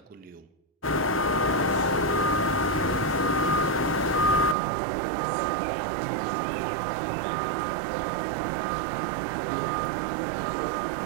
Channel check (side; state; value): left; drops out; at 4.5 s